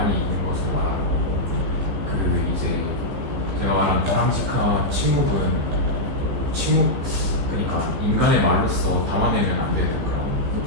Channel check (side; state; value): left; late; 15 ms